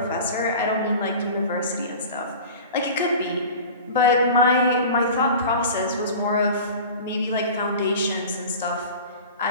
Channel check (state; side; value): inverted; both; correlation -0.37